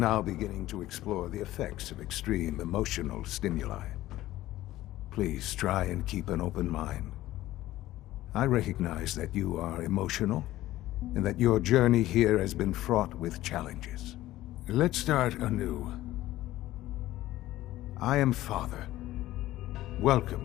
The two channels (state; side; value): quieter; right; 15.5 dB